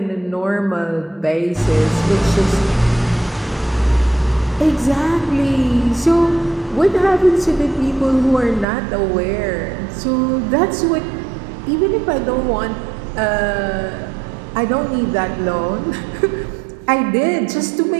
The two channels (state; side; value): drops out; left; at 8.7 s